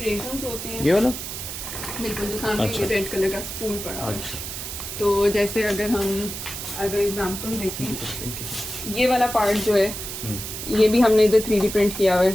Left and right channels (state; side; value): noise; right; hiss, 7 dB below the sound